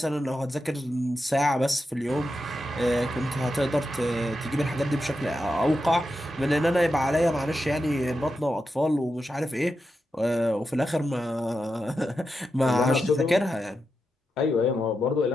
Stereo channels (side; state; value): both; normal; correlation 0.88